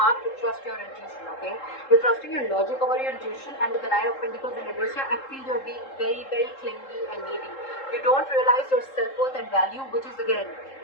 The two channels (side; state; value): right; late; 3.7 ms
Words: to trust your intuition, okay? You're trusting your logic over your intuition, and with the Nine of Pentacles in reverse here, I feel you're being very, very clingy and needy. You don't realize your self-worth and value, which is, again,